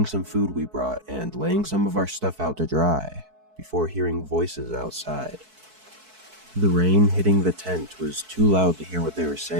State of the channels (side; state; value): left; late; 4.6 ms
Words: some food we brought and laying some of our stuff out to dry, before hearing voices outside. The rain hitting the tent was too loud to hear what they were